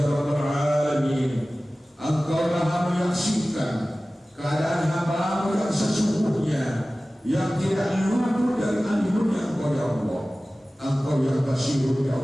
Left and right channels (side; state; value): both; normal; correlation 0.97